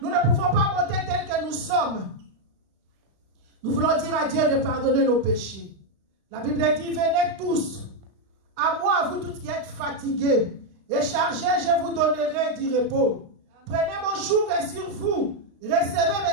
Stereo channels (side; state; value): left; late; 36 ms